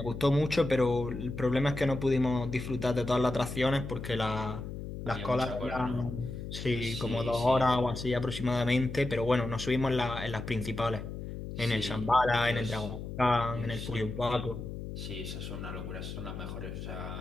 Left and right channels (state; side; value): noise; left; hum, 8 dB below the sound